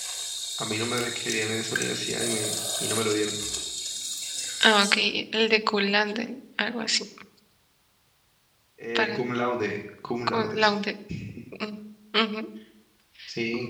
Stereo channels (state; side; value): identical; both; correlation 1.00